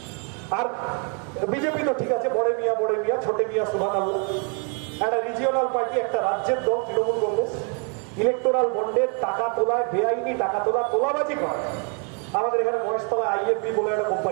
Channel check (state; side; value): quieter; left; 39.1 dB